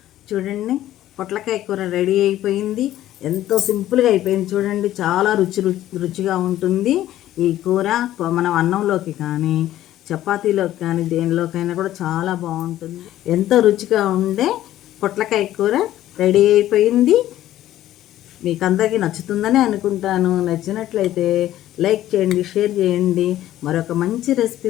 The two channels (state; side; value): quieter; right; 13.4 dB